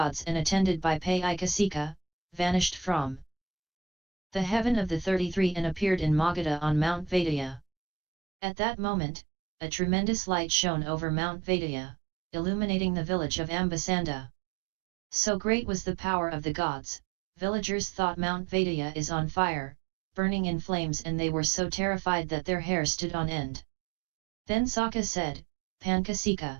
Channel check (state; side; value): drops out; left; at 7.7 s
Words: and attended by Paiicasikha, vanished from the heaven of the 33 and appeared in Magadha on Mount Vediya. At that moment, a tremendous light shone over Mount Vediya, illuminating the village of Ambasanda. So great was the power of the gods, villagers thought Mount Vediya is on fire, burning in flames, and they were so terrified that their hair stood on end. Then Sakka said,